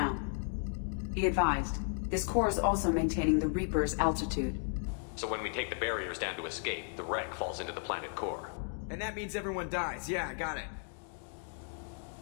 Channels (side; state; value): right; silent; 55 dB below the other